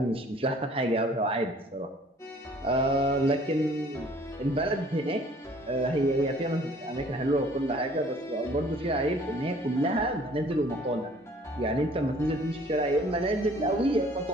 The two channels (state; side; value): normal; both; correlation 0.55